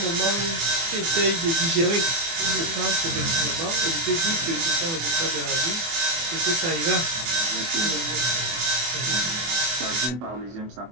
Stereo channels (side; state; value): left; late; 24 ms